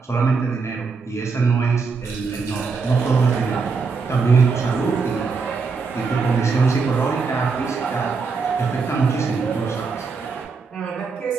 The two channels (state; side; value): quieter; left; 4.8 dB